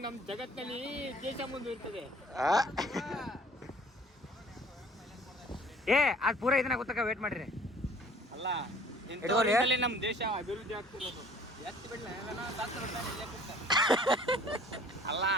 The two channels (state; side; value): normal; both; correlation 0.53